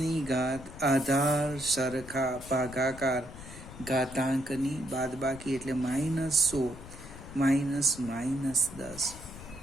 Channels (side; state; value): left; noise; rumble, 15 dB below the sound